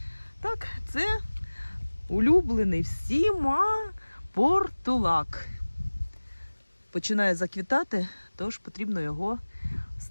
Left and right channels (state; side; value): inverted; both; correlation -1.00